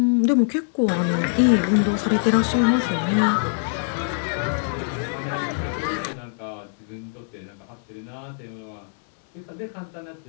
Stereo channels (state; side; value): silent; right; 62 dB below the other